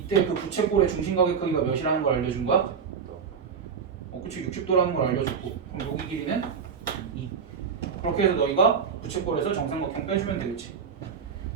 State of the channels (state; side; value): quieter; left; 6.5 dB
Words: 그 부채꼴의 중심각의 크기가 몇이라는 걸 알려준 거야? 그치 60도라는 걸 알려줬고 그럼 여기 길이는 2. 그렇게 해서 너희가 부채꼴에서 정삼각형 빼주면 되겠지.